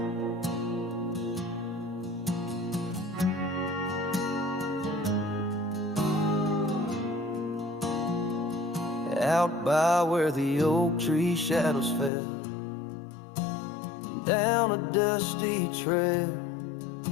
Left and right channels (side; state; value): right; drops out; at 12.1 s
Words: out by where the oak tree shadows fell, down a dusty trail